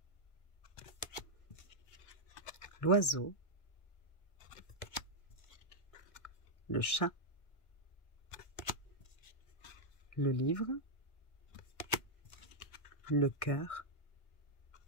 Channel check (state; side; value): late; right; 1.6 ms